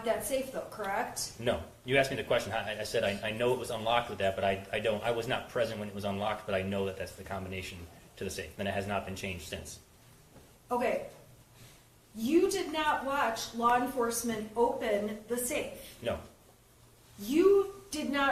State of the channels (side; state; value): both; identical; correlation 1.00